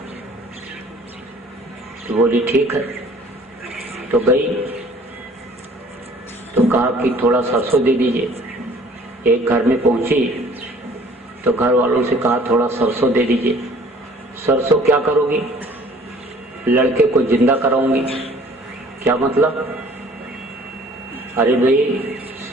तो बोली ठीक है। तो गई तो कहा कि थोड़ा सरसों दे दीजिए। एक घर में पहुंची तो घर वालों से कहा थोड़ा सरसों दे दीजिए। सरसों क्या करोगी? लड़के को जिंदा कराऊंगी। क्या मतलब? अरे भाई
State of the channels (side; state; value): both; normal; correlation 0.53